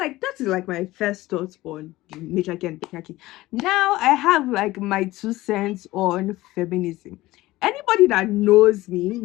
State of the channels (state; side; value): quieter; right; 17.9 dB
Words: that is like my first thoughts on the matriarchy and patriarchy. Now I have like my 2 cents on feminism. Anybody that knows me